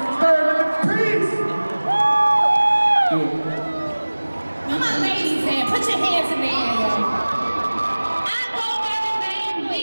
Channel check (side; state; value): both; inverted; correlation -1.00